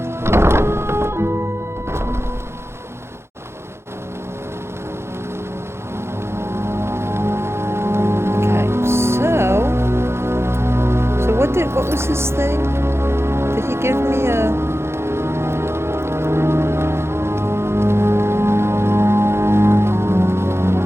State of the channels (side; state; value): left; late; 0.12 ms